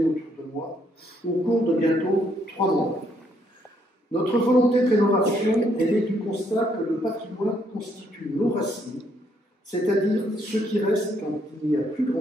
autour de moi au cours de bientôt 3 mois. Notre volonté de rénovation est née du constat que le patrimoine constitue nos racines, c'est-à-dire ce qui reste quand il n'y a plus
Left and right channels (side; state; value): both; normal; correlation 0.71